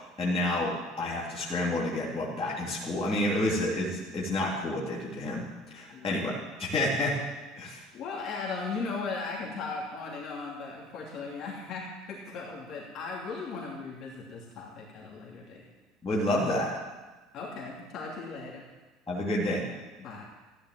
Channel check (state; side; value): normal; both; correlation 0.53